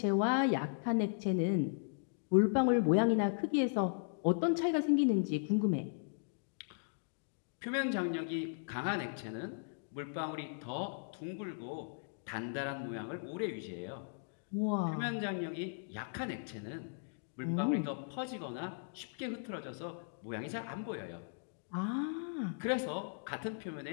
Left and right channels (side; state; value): right; silent; digital silence